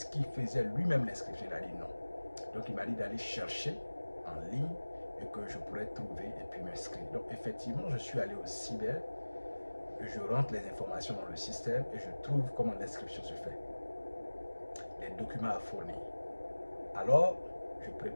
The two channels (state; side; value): inverted; both; correlation -1.00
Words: qu'il faisait lui-même l'inscription? Il a dit non. Donc, il m'a dit d'aller chercher en ligne et que je pourrais trouver et puis m'inscrire. Donc, effectivement, je suis allé au cyber, je rentre les informations dans le système et je trouve comment l'inscription se fait. Les documents à fournir. Alors, je